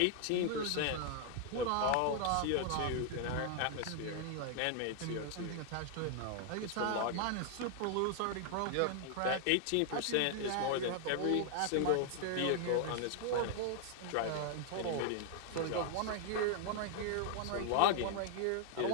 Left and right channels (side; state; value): both; different; correlation 0.00